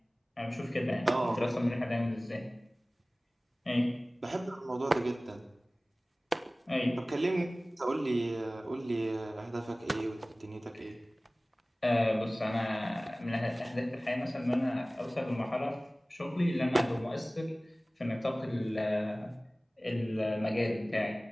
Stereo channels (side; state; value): both; normal; correlation 0.98